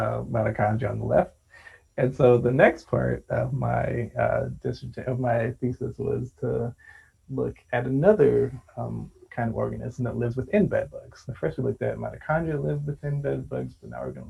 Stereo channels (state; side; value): identical; both; correlation 1.00